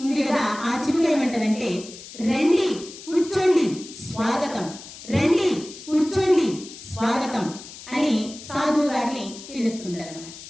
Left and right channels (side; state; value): left; noise; hiss, 15 dB below the sound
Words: ఉంది కదా, ఆ చిలుక ఏమంటారంటే రండి కూర్చోండి స్వాగతం, రండి కూర్చోండి స్వాగతం అని సాధువు గారిని పిలుస్తుంటారు అన్నమాట.